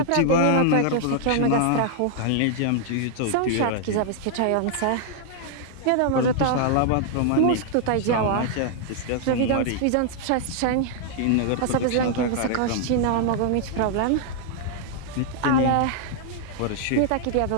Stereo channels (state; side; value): different; both; correlation -0.01